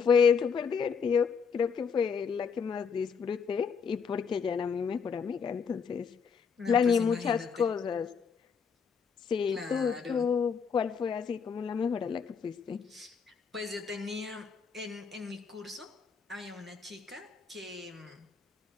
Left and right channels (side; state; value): right; quieter; 6.1 dB